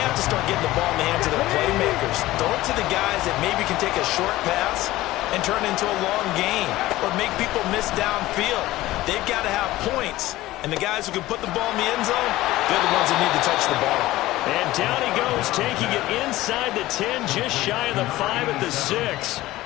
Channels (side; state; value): right; quieter; 16.9 dB